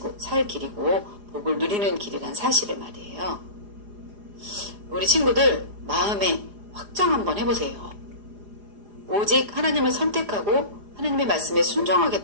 복을 누리는 길이란 사실을 말이에요. 우리 친구들, 마음에 확정 한번 해보세요. 오직 하나님을 선택하고 하나님의 말씀에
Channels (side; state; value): left; late; 4.9 ms